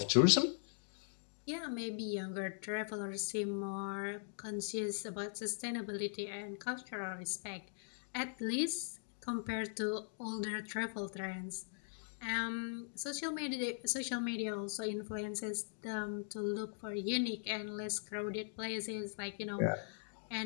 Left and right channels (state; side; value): silent; right; digital silence